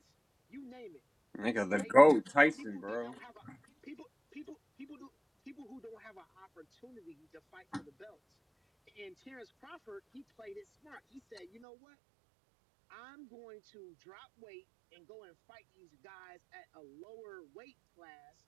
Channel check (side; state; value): left; drops out; at 11.6 s